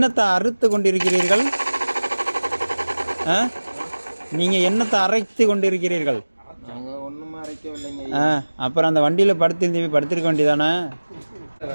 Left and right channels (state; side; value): inverted; both; correlation -1.00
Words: அறுத்து கொண்டிருக்கிறீர்கள்? நீங்கள் என்னத்தை அரைத்து கொண்டிருக்கிறீர்கள்? அப்புறம் அந்த வண்டியில் படுத்திருக்க வேண்டியதானே?